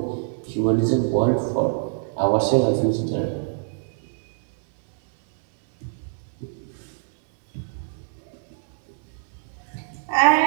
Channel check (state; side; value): silent; left; 61 dB below the other